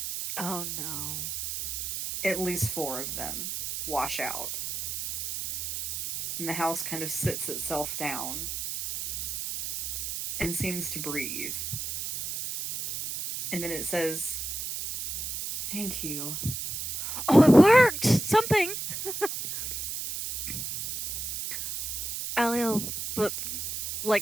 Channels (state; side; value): noise; right; hiss, 4 dB below the sound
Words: Oh no. At least 4 of them wash out. And the house kind of sits itself down and seems to breathe. And then it says, "Thank you." Oh, it worked! Something! Aliel, but